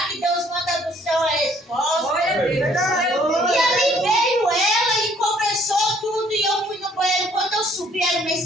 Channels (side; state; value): both; normal; correlation 0.62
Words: que Deus manda do céu a resposta. E ali veio ela e conversou tudo e eu fui no banheiro. Quando eu subi, era uma